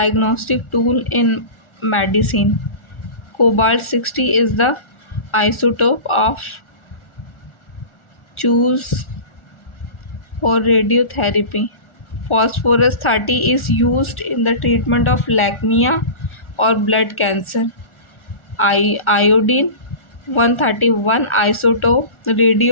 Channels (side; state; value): right; late; 1.4 ms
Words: tool in medicine. Cobalt 60 is the isotope of choose for radiotherapy. Phosphorus 30 is used in the treatment of leukemia or blood cancer. Iodine 131 isotope,